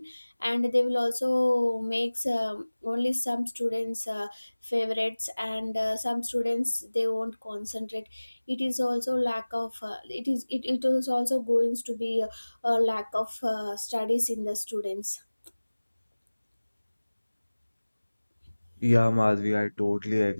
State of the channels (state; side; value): inverted; both; correlation -1.00